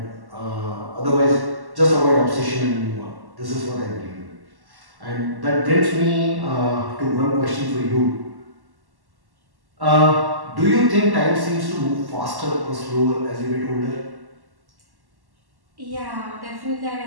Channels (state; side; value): late; left; 1.1 ms